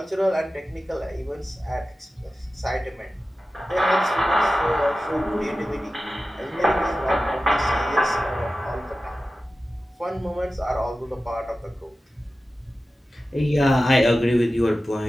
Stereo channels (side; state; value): both; normal; correlation 0.94